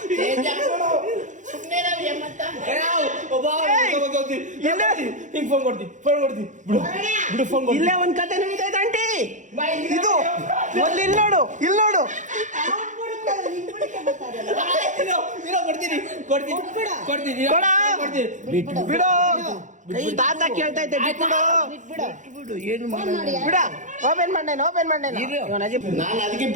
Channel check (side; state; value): left; late; 0.36 ms